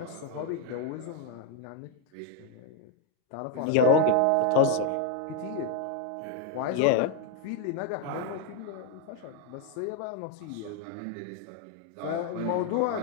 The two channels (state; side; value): different; both; correlation 0.01